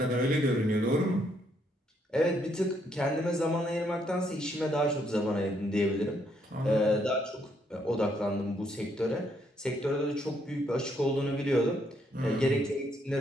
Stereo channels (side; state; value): both; normal; correlation 0.73